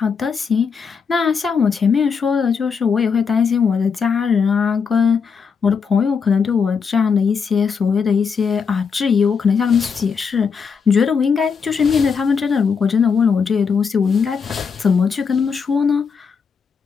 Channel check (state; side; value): quieter; right; 6.0 dB